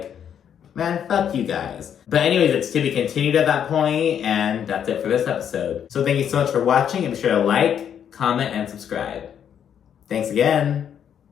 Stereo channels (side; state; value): right; quieter; 8.8 dB